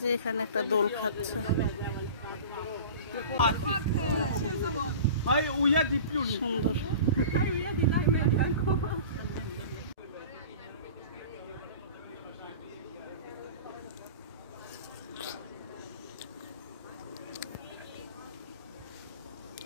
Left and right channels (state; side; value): inverted; both; correlation -0.37